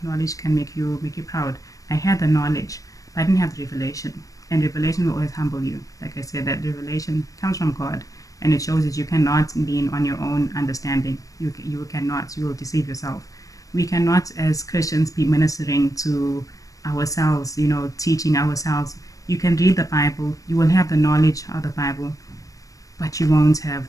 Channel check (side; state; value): right; late; 0.16 ms